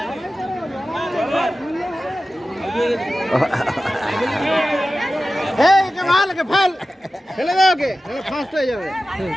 ফেলে দাও ওকে, ফার্স্ট হয়ে যাবে।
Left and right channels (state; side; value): normal; both; correlation 0.95